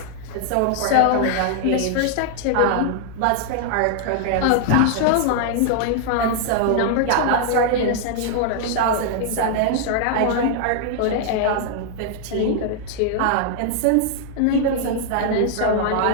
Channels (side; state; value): both; different; correlation 0.00